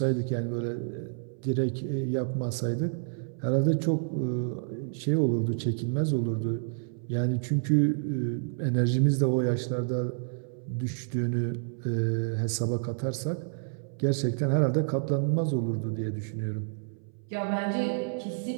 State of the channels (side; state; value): left; silent; 58 dB below the other